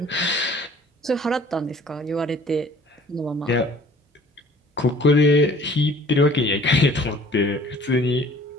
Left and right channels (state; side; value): normal; both; correlation 0.52